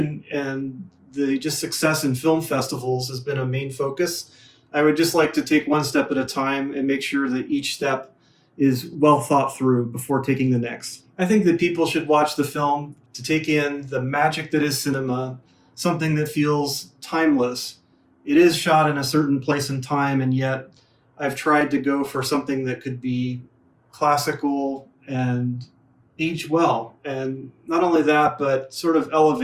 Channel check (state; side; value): identical; both; correlation 1.00